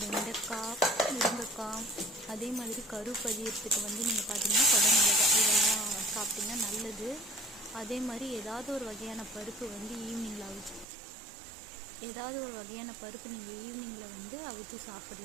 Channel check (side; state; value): left; drops out; at 10.9 s